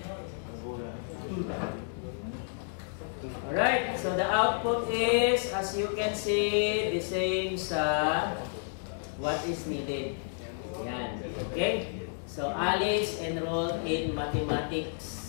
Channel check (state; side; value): silent; right; digital silence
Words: Alright, so the output is, as you can see, the same sa what is needed. Yan. Okay? So, Alice enrolled in